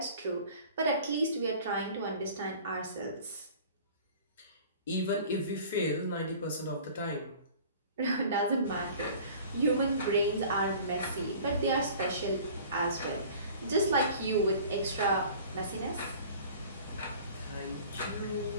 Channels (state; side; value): inverted; both; correlation -0.46